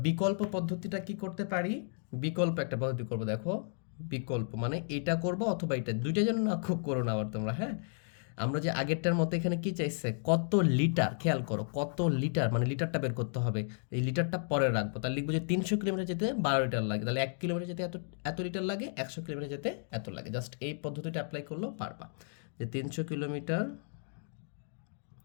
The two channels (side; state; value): right; silent; digital silence